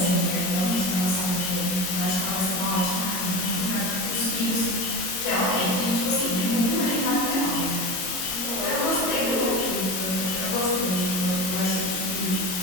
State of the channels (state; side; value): late; right; 22 ms